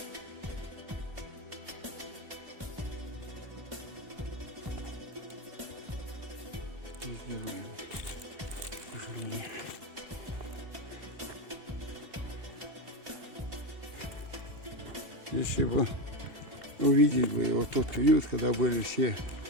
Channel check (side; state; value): left; late; 2.7 ms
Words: Везде руины. К сожалению. Если бы увидеть бы вот тот период, когда были все